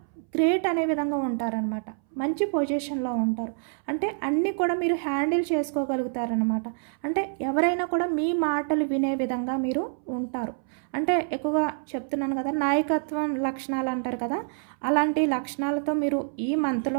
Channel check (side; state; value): left; silent; 60 dB below the other